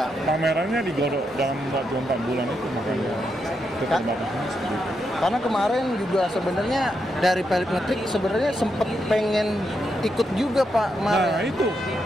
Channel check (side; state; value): both; normal; correlation 0.82